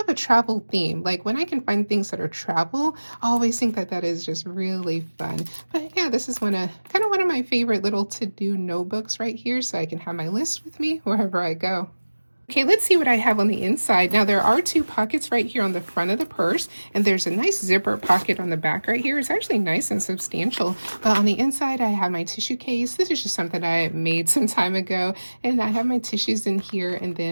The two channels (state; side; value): inverted; both; correlation -1.00